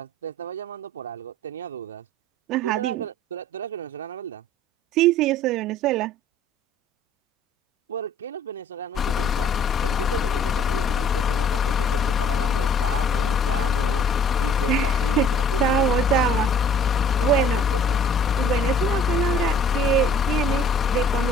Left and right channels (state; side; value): normal; both; correlation 0.54